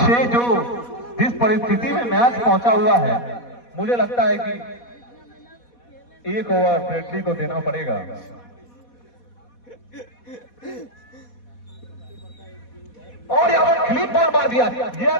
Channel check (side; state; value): right; late; 4.1 ms